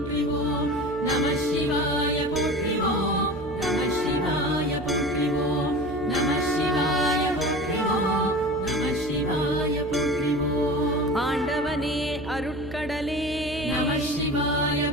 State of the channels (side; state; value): right; noise; hum, 13 dB below the sound